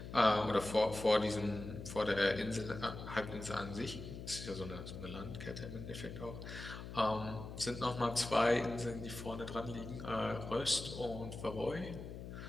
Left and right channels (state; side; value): noise; left; hum, 10 dB below the sound